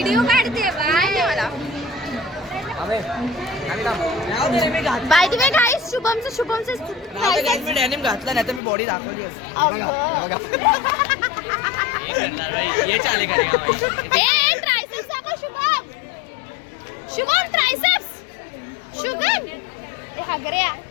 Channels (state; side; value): drops out; right; at 8.6 s